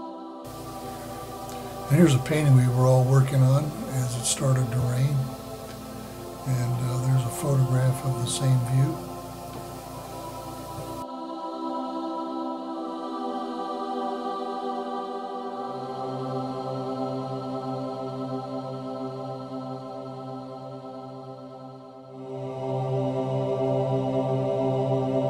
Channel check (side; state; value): both; identical; correlation 1.00